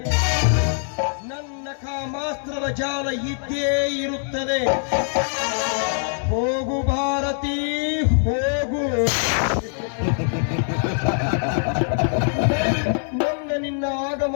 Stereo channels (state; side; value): silent; right; 64 dB below the other